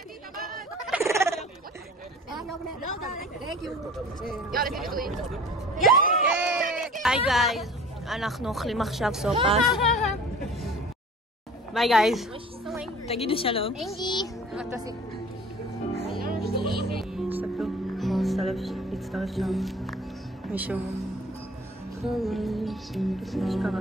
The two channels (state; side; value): normal; both; correlation 0.45